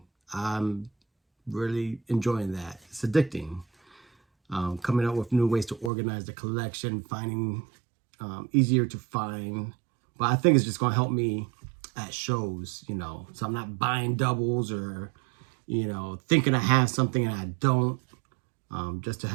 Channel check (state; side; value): drops out; left; at 5.9 s